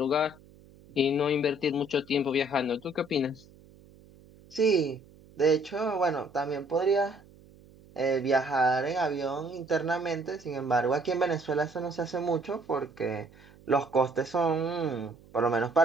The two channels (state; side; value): noise; right; hum, 25 dB below the sound